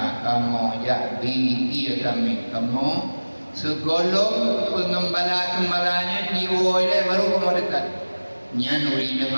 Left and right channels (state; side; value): inverted; both; correlation -1.00